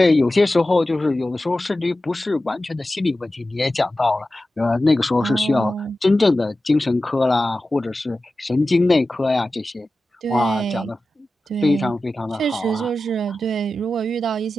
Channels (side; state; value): both; normal; correlation 0.94